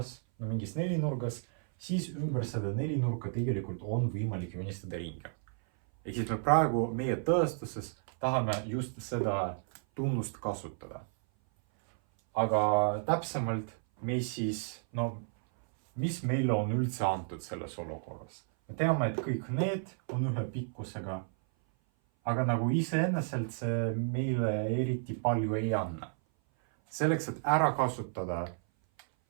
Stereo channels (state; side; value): silent; left; 56 dB below the other